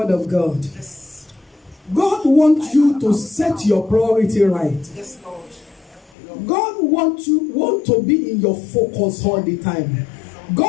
of God. God wants you to set your priority right. God want to be in your focus all the time.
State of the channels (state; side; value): drops out; right; at 6.1 s